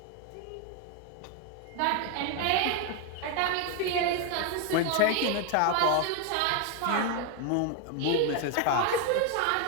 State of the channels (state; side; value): different; both; correlation 0.01